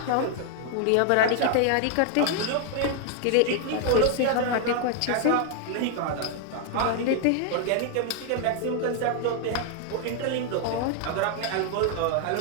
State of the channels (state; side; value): different; both; correlation 0.00